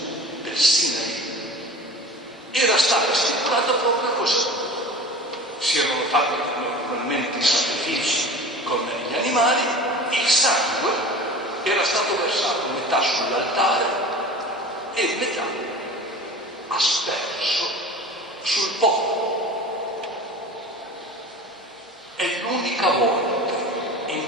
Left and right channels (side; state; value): both; normal; correlation 0.37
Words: del Sinai, era stata stipulata proprio così. Si erano fatti naturalmente i sacrifici con gli animali, il sangue era stato versato metà sull'altare e metà asperso sul popolo. È l'unica volta